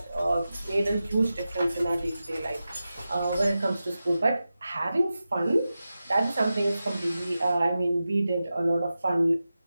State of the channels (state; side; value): inverted; both; correlation -0.92